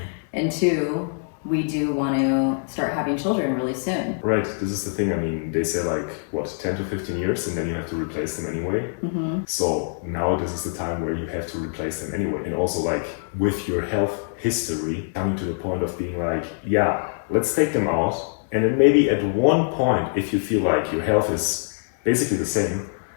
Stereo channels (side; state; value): right; silent; digital silence